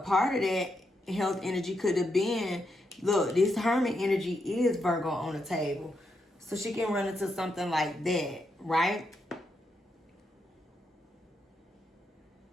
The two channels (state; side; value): normal; both; correlation 0.82